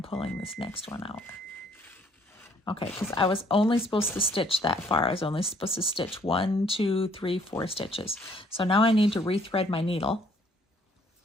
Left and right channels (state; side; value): normal; both; correlation 0.63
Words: pulling this next one out. Okay, because I was only supposed to stitch that far. I was only supposed to stitch 1, 2, 3, 4 stitches. So now I need to rethread my needle,